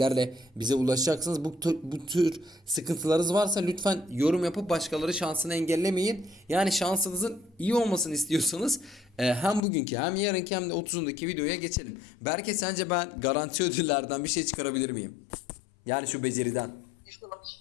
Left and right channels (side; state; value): right; drops out; at 9.6 s